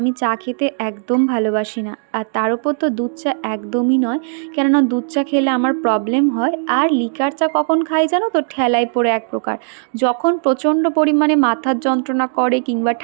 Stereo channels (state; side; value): silent; left; digital silence